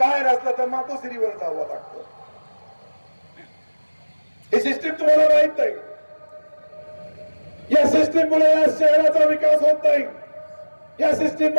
असलं तर मातोश्रीवर जावं लागतं. ही सिस्टीम तुम्हाला माहित नाही. या सिस्टीम मुळे या शहराचा विकास होत नाही, या सिस्टीम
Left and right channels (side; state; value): both; inverted; correlation -1.00